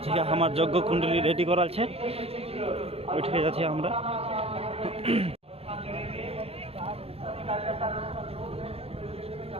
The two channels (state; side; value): late; left; 0.29 ms